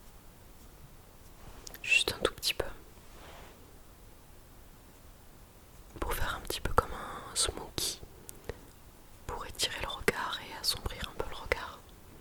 Juste un tout petit peu. Pour faire un petit peu comme un smoky. Pour étirer le regard et assombrir un peu le regard.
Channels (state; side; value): identical; both; correlation 1.00